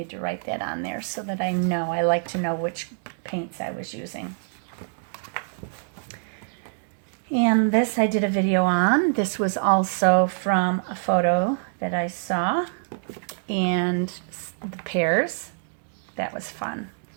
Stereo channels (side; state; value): left; silent; digital silence